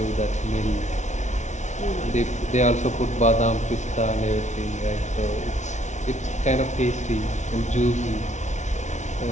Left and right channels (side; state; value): right; late; 0.34 ms